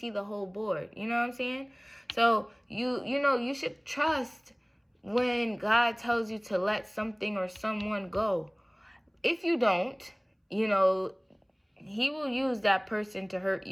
the whole board. You know what I'm saying? So you should trust when God tells you to let something or someone go. If you don't, he will use that person to hurt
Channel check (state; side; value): identical; both; correlation 1.00